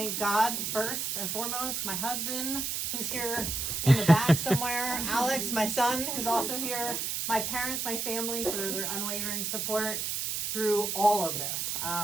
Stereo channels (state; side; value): noise; right; hiss, 2 dB below the sound